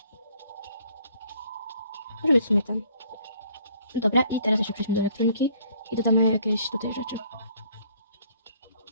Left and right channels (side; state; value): both; inverted; correlation -0.61